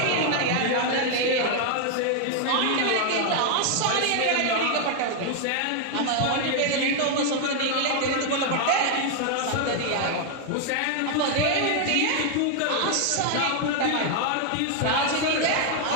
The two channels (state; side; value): different; both; correlation 0.00